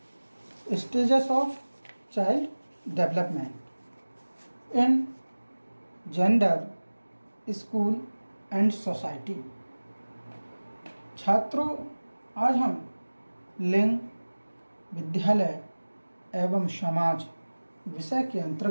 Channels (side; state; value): both; inverted; correlation -1.00